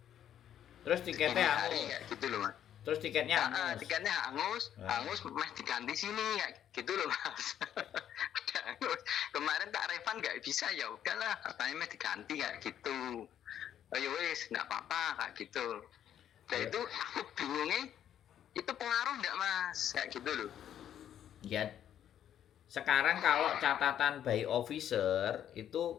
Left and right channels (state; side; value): quieter; right; 10.2 dB